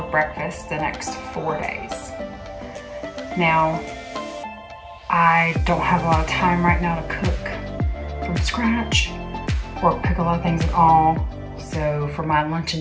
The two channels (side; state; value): both; identical; correlation 1.00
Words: breakfast the next 4 days. Now, I don't have a lot of time right now to cook from scratch or cook a lot of things at all. So for my lunch